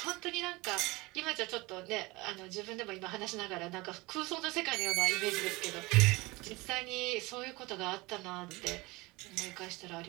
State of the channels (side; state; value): left; quieter; 22.9 dB